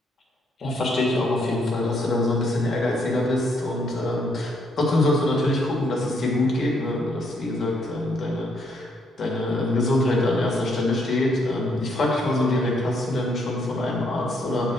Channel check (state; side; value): normal; both; correlation 0.72